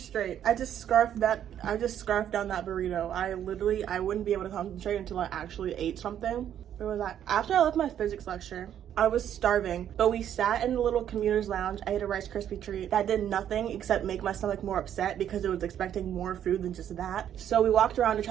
I just scarfed down that burrito. I wouldn't be able to concentrate until I actually ate something. Where was I? After I left my physics lecture, I was starving, but we sat in the little commuter's lounge. I ate a Rice Krispie treat that did nothing except make my stomach more upset because it was expecting more food than just that. So we walked around to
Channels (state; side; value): quieter; left; 10.1 dB